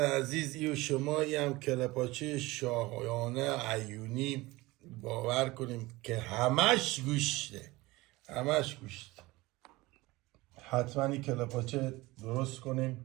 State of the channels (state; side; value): quieter; left; 20.7 dB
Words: ای و شما ای هم کله پاچه شاهانه عیونی، باور کنیم که همش گوشته، همش گوشت. حتما این کله پاچه درست کنیم